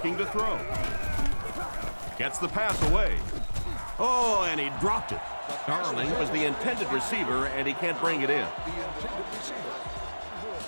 to throw. Gets the pass away. Oh, and he dropped it. Darling was the intended receiver, and he can't bring it in.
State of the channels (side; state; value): both; inverted; correlation -1.00